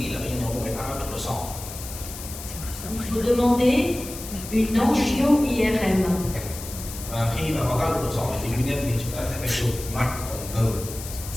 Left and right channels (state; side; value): noise; left; hiss, 11 dB below the sound